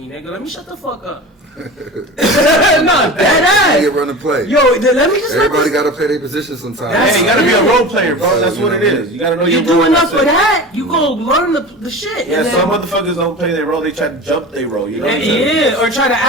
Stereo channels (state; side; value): normal; both; correlation 0.33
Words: nigga. Let me shut the fuck up. Nah, bad You ass. get run the play. Yo, then let me just let Everybody this. got to play their position sometimes. Hey, you gotta be a role player, bro. That's what it is. You gotta know You your do role. enough That's of it. that, you go learn the shit. Yeah, and some then- motherfuckers don't play their role. They try to jump their role. You know what I'm saying? Yeah, or try to